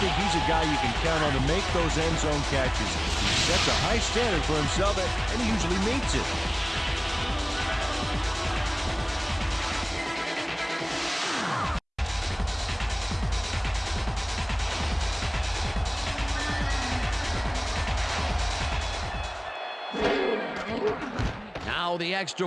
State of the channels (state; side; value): identical; both; correlation 1.00